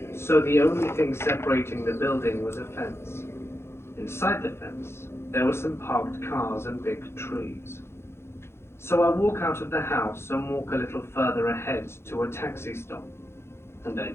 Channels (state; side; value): late; right; 0.12 ms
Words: so the only thing separating the building was a fence. Inside the fence, there were some parked cars and big trees. So I walk out of the house and walk a little further ahead to a taxi stop, and I